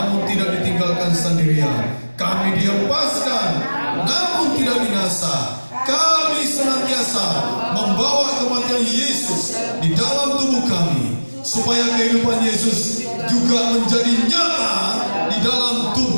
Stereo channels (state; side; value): inverted; both; correlation -1.00